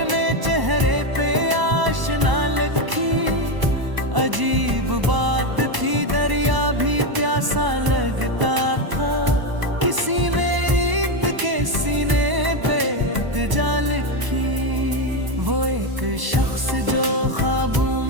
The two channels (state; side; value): late; left; 1.0 ms